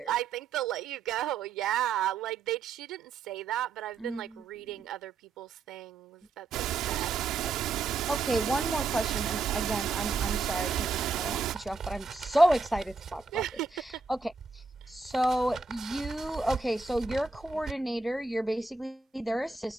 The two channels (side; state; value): left; quieter; 4.0 dB